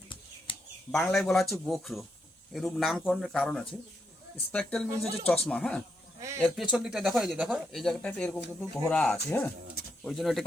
বাংলায় বলা হচ্ছে গোখরো। এরূপ নামকরণের কারণ আছে। স্পেকট্রাল মিনস হচ্ছে চশমা, হ্যাঁ, এর পেছন দিকটা দেখো, এই যে দেখো এই জায়গাটাতে এরকম কিন্তু ঘোরা আছে, হ্যাঁ, ওই জন্য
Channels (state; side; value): normal; both; correlation 0.80